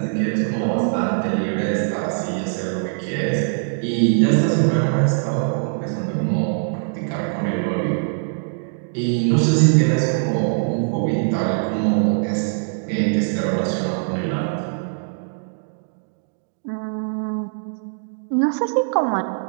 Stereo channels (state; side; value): silent; left; digital silence